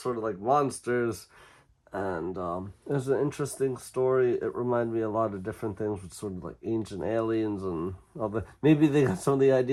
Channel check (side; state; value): both; identical; correlation 1.00